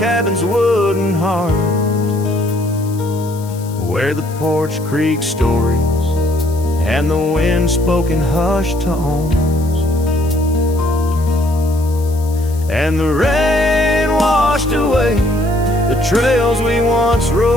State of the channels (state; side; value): noise; left; hiss, 20 dB below the sound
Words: wooden heart, where the porch creak stories and the wind spoke in hushed tones. And the rain washed away the trails we once